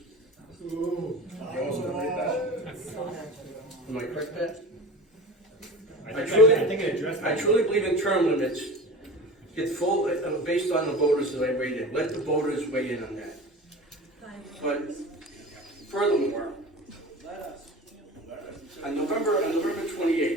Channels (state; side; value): normal; both; correlation 0.34